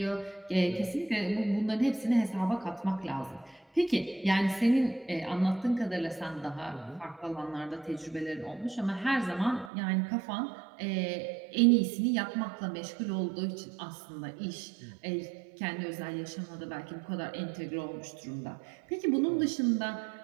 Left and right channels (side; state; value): left; drops out; at 9.7 s